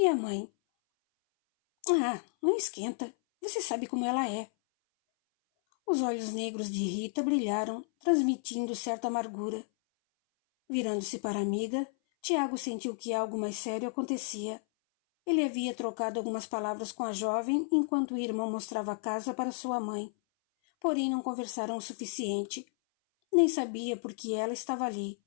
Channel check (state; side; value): silent; right; 56 dB below the other